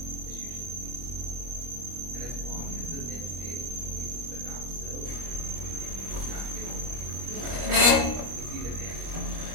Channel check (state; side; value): late; left; 25 ms